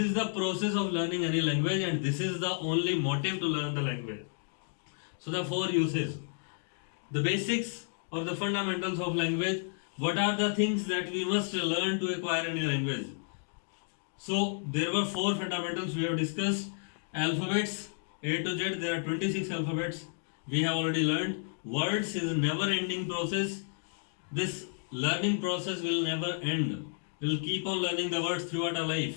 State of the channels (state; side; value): silent; right; digital silence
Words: the process of learning any language, and this is the only motive to learn the language. So, the four uses. The basics or the fundamentals of language. What are the things that we must learn to acquire any language? So there were four fundamentals we have discussed. Alphabets, A to Z, there are 26 alphabets. We have already learned. Words is a never ending process. This learning process will never end. We will keep on learning the words throughout our